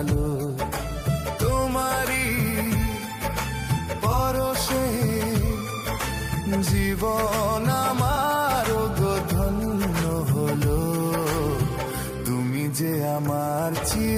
তোমারি পরশে জীবন আমার গো ধন্য হলো। তুমি যে আমার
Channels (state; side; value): identical; both; correlation 1.00